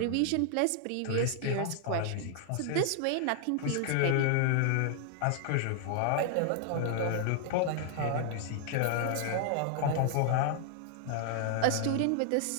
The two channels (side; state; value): both; different; correlation 0.00